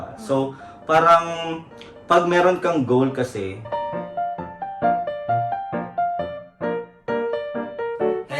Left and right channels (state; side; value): identical; both; correlation 1.00